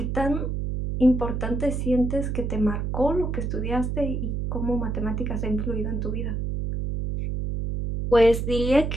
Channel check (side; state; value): right; noise; hum, 2 dB below the sound